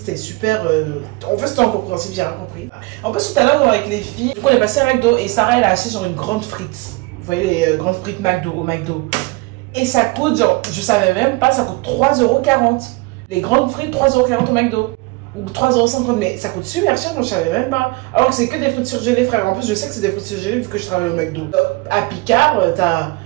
super... En fait c'était incompréhensible, j'ai rien compris. En plus tout à l'heure avec les filles, du coup on est passé à McDo et Sarah elle a acheté genre une grande frite. Vous voyez les grandes frites McDo au McDo. Et ça coûte genre, je savais même pas, ça coûte 3,40 €. Les grandes frites 3,40 € au McDo. Ou 3,50 €, mais ça coûte super cher, donc je savais même pas. Alors que c'est que des frites surgelées, frère. En plus, je sais que c'est des frites surgelées vu que je travaille au McDo. À Picard, t'as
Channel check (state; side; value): quieter; left; 24.4 dB